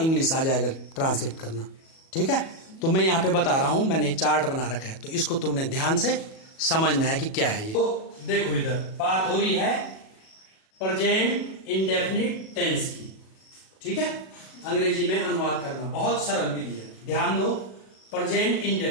आ जाएगा ट्रांसलेट करना। ठीक है, तो मैं यहाँ पे बता रहा हूं, मैंने चार्ट बना रखा है, तो इसको तुमने ध्यान से समझना है कि क्या है ये। तो देखो, इधर बात हो रही है प्रेजेंट इंडेफिनिट टेंस की। ठीक है, अंग्रेजी में अनुवाद करना बहुत सरल विधि है, ध्यान दो। प्रेजेंट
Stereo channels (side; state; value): right; late; 37 ms